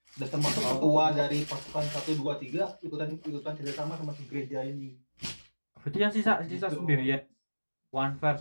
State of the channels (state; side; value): inverted; both; correlation -1.00